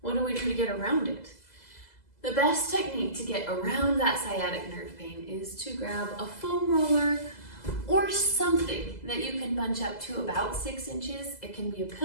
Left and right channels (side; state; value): right; late; 2.0 ms